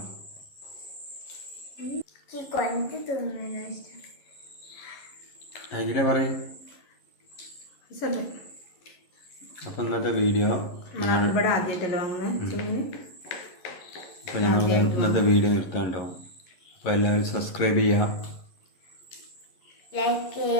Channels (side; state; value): right; late; 11 ms